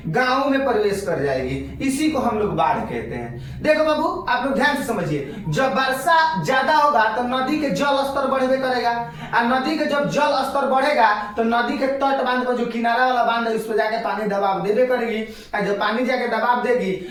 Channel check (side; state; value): both; identical; correlation 1.00